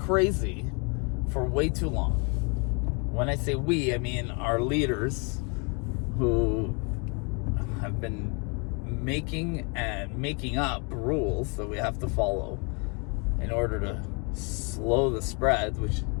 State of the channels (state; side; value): quieter; right; 34.2 dB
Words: for way too long. When I say we, I mean our leaders who have been making up rules that we have to follow in order to slow the spread, which